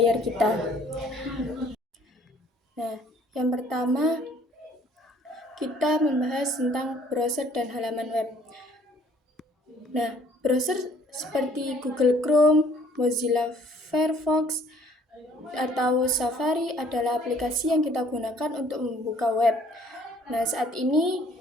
kita. Nah, yang pertama kita membahas tentang browser dan halaman web. Nah, browser seperti Google Chrome, Mozilla Firefox, atau Safari adalah aplikasi yang kita gunakan untuk membuka web. Nah, saat ini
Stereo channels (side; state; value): both; normal; correlation 0.59